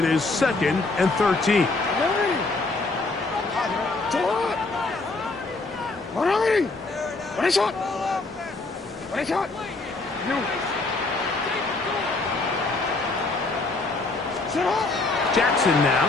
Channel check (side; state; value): right; quieter; 3.4 dB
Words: is 2nd and 13. 180! What is shot? What is shot? You. Jackson now.